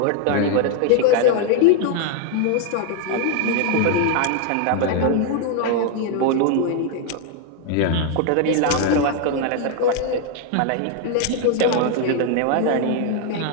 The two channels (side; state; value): both; different; correlation 0.00